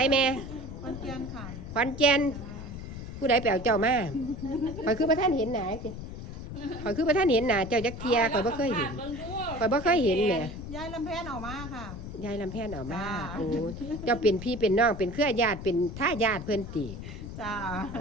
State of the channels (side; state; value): left; noise; rumble, 9 dB below the sound